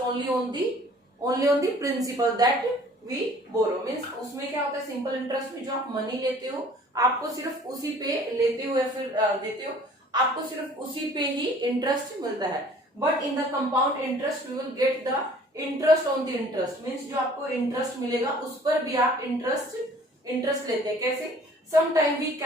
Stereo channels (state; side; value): normal; both; correlation 0.52